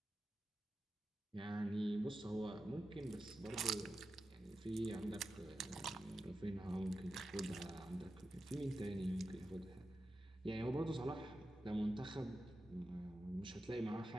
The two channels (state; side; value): normal; both; correlation 0.91